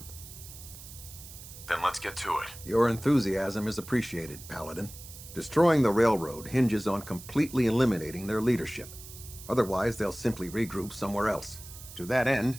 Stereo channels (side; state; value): right; noise; hiss, 15 dB below the sound